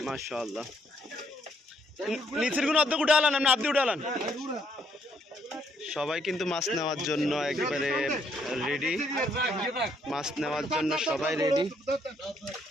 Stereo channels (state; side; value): normal; both; correlation 0.71